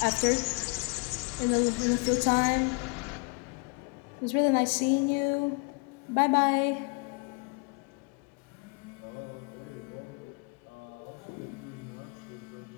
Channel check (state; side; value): quieter; right; 33.5 dB